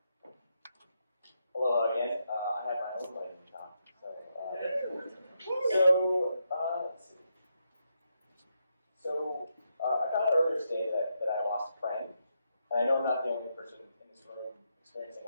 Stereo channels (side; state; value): both; inverted; correlation -0.81